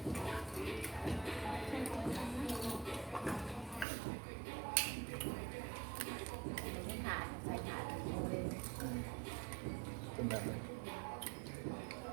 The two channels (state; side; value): drops out; left; at 3.9 s